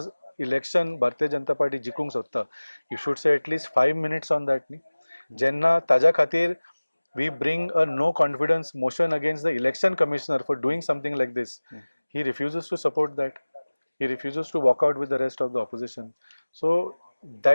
इलेक्शन भारतीय जनता पार्टी जिखूंक सोदता, you should say at least 5 minutes on that न्ही. जेन्ना ताज्या खातीर we bring a no confidence motion against the election commissioner for doing something like this, he refuses to support that. He refuses to walk out with the rest of the opposition. So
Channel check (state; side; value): inverted; both; correlation -1.00